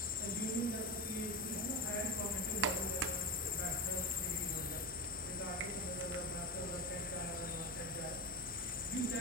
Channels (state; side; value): normal; both; correlation 0.21